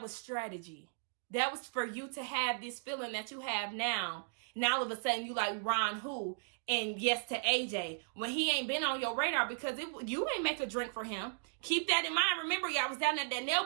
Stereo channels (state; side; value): silent; left; digital silence